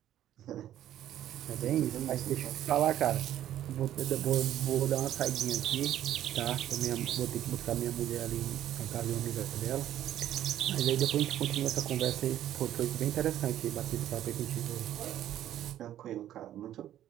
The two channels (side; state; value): left; quieter; 12.0 dB